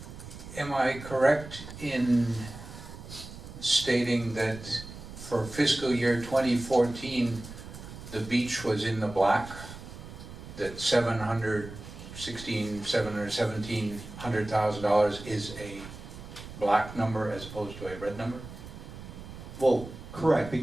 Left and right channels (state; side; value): noise; right; rumble, 13 dB below the sound